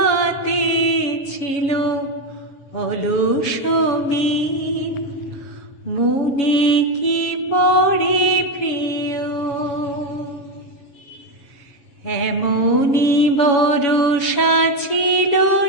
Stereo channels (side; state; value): right; late; 7.0 ms